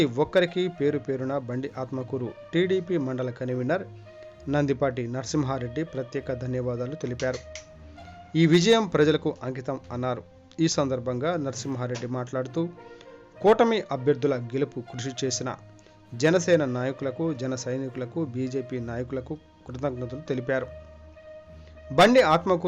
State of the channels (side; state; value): both; identical; correlation 1.00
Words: ఒక్కరికి పేరు పేరున బండి ఆత్మకూరు టీడీపీ మండల కన్వీనర్ నందిపాటి నరసింహారెడ్డి ప్రత్యేక ధన్యవాదాలు తెలిపారు. ఈ విజయం ప్రజలకు అంకితం అన్నారు. ఈ సందర్భంగా నరసింహారెడ్డి మాట్లాడుతూ కూటమి అభ్యర్థుల గెలుపు కృషి చేసిన జనసేన నాయకులకు, జన సైనికులకు, బీజేపీ నాయకులకు కృతజ్ఞతలు తెలిపారు. బండి